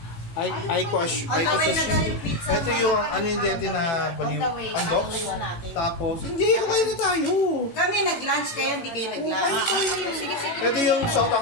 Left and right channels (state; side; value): late; right; 18 ms